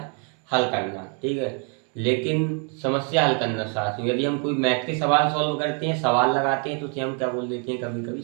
हल करना, ठीक है, लेकिन समस्या हल करना साथियों, यदि हम कोई मैथ के सवाल सॉल्व करते हैं, सवाल लगाते हैं, तो उसे हम क्या बोल देते हैं, कभी कभी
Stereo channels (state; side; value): quieter; left; 39.7 dB